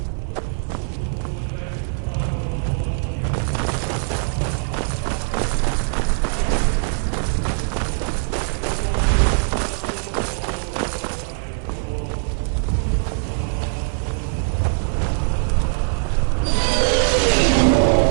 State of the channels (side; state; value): left; silent; 57 dB below the other